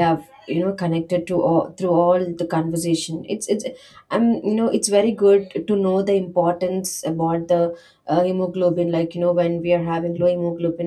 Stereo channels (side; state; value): both; identical; correlation 1.00